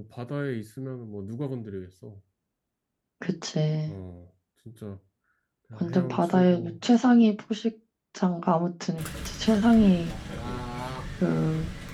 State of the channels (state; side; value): identical; both; correlation 1.00